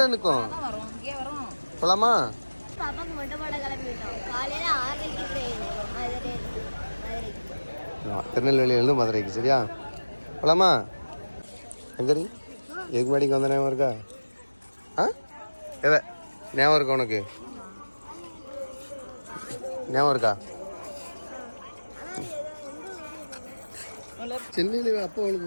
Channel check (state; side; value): inverted; both; correlation -1.00